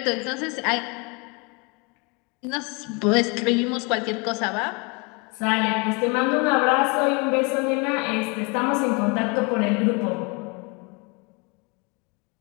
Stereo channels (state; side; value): quieter; right; 30.4 dB